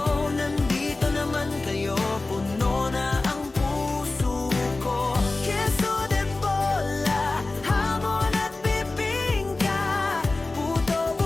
Nandito naman kayo, puno na ang puso ko. Queso de bola, hamon at bibingka, puto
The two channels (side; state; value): right; quieter; 3.2 dB